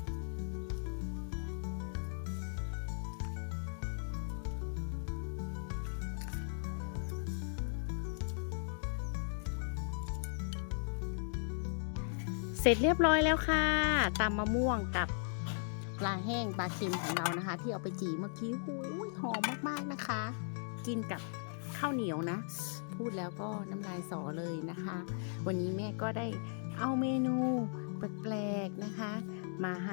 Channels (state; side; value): silent; right; digital silence